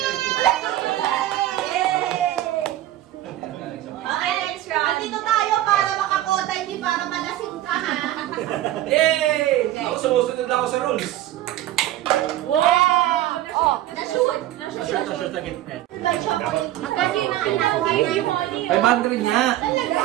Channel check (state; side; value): quieter; left; 14.0 dB